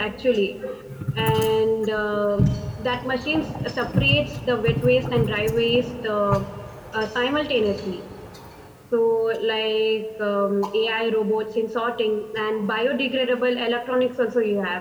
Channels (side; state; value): both; identical; correlation 1.00